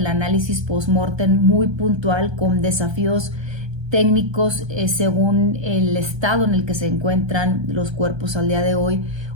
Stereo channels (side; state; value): left; late; 1.3 ms